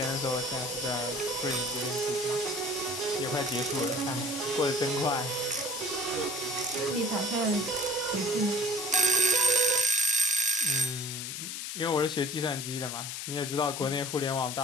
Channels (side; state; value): left; noise; hiss, 6 dB below the sound